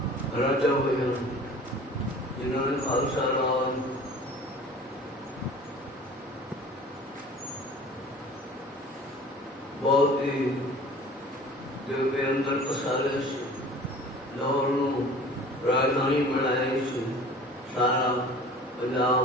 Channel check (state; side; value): normal; both; correlation 0.44